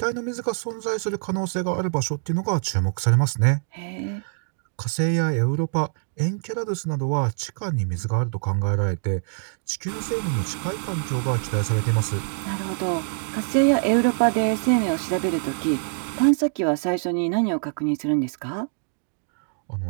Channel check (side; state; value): left; silent; 62 dB below the other